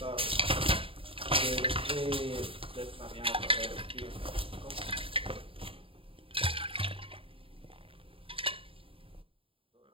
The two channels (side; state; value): left; late; 0.26 ms